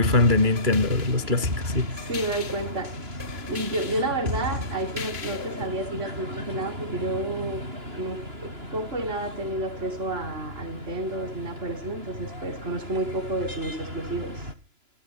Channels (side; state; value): left; late; 2.9 ms